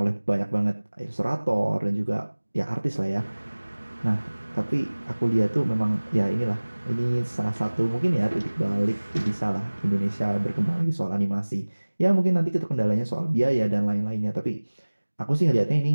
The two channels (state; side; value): inverted; both; correlation -1.00